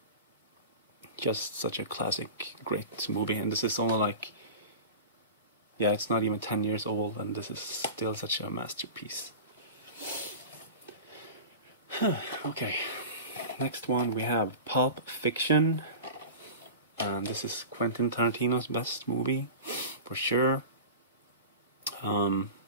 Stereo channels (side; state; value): both; inverted; correlation -0.32